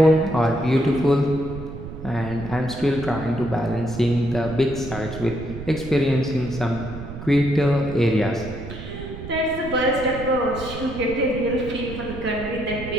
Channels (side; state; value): right; noise; rumble, 10 dB below the sound